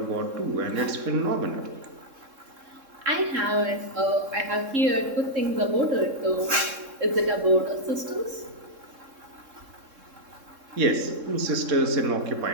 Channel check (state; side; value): late; left; 3.7 ms